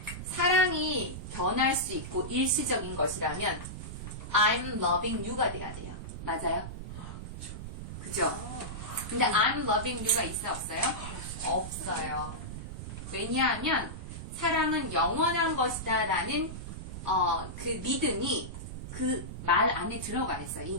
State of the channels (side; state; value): right; noise; rumble, 8 dB below the sound